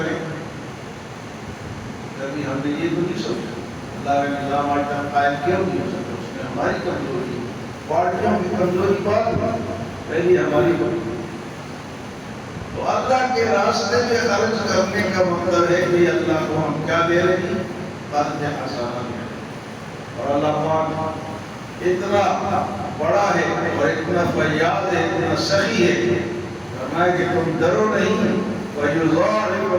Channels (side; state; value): both; identical; correlation 1.00